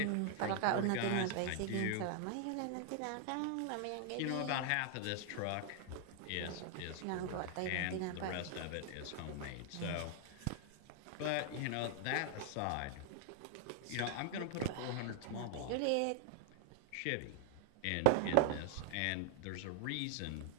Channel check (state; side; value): different; both; correlation 0.00